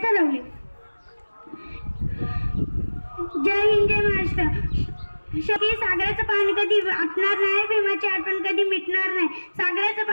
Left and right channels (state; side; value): inverted; both; correlation -1.00